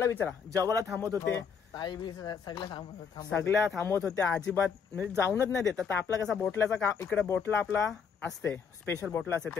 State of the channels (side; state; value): right; quieter; 6.5 dB